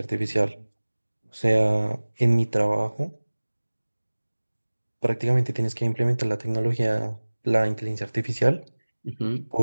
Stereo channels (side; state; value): both; inverted; correlation -1.00